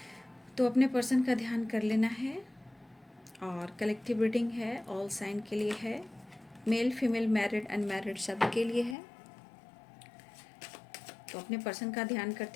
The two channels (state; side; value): drops out; right; at 9.0 s